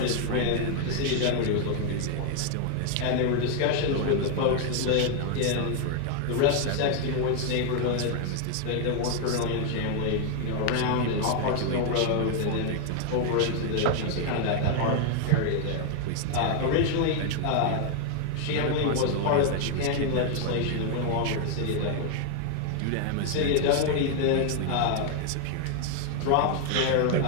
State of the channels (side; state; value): both; different; correlation 0.00